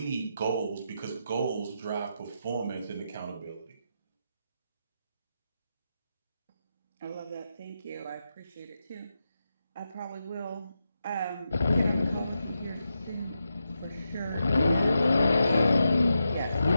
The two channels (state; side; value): inverted; both; correlation -0.87